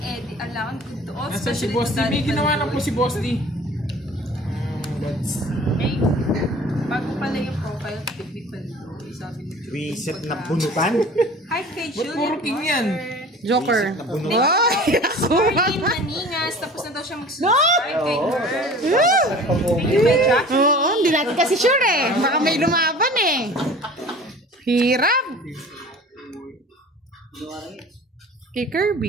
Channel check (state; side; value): normal; both; correlation 0.43